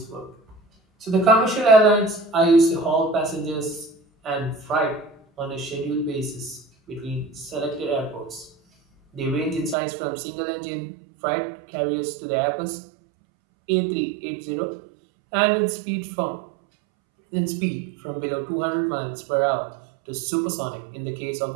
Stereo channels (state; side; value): drops out; left; at 9.8 s